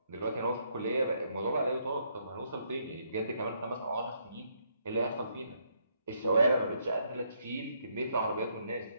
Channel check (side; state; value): both; inverted; correlation -0.73